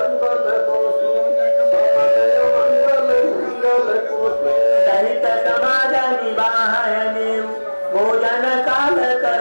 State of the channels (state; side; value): inverted; both; correlation -1.00